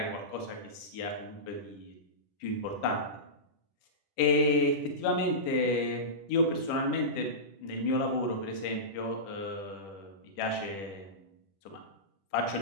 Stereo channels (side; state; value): right; late; 10 ms